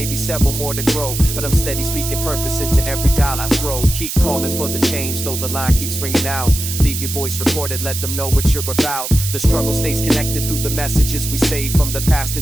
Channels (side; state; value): right; noise; hiss, 5 dB below the sound